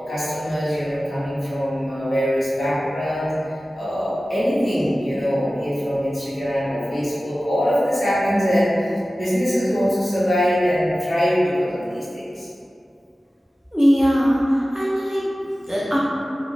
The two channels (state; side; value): normal; both; correlation 0.96